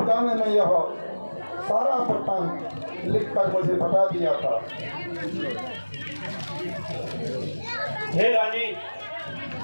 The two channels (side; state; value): both; inverted; correlation -1.00